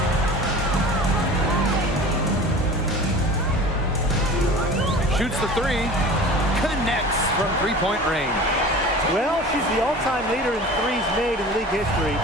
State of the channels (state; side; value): normal; both; correlation 0.39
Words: Shoots the three. Connects from three-point range. Well, she's the all-time leader in threes made in league history.